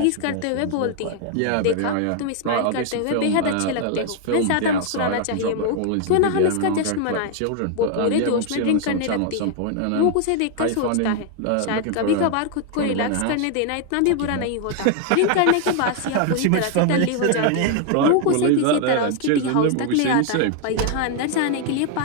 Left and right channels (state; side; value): different; both; correlation 0.00